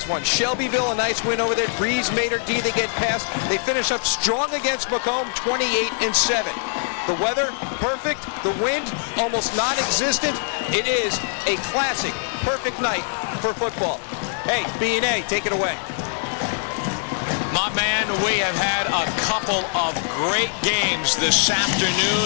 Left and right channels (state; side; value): silent; right; 64 dB below the other